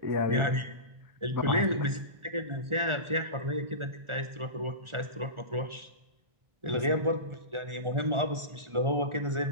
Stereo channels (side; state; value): left; late; 1.4 ms